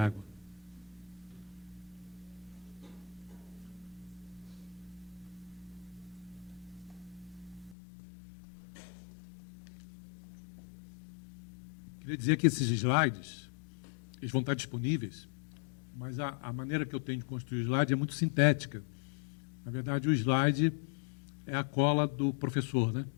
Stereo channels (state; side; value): drops out; right; at 7.8 s